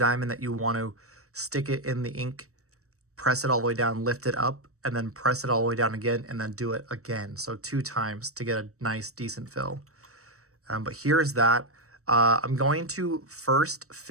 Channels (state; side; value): late; left; 0.65 ms